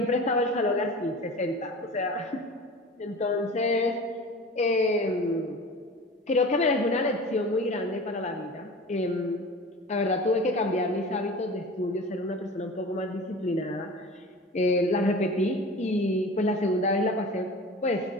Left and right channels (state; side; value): normal; both; correlation 0.36